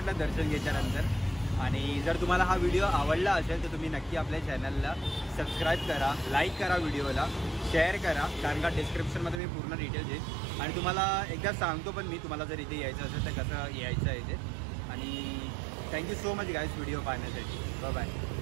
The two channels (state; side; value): drops out; left; at 9.4 s